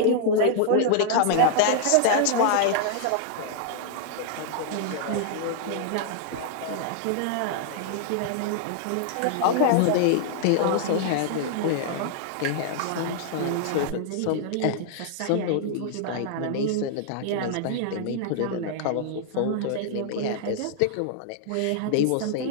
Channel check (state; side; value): different; both; correlation -0.01